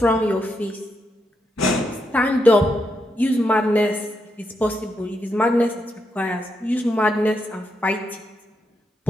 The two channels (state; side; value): normal; both; correlation 0.82